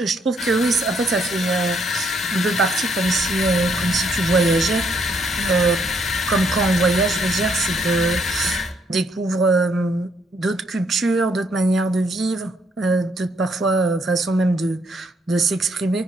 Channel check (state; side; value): normal; both; correlation 0.71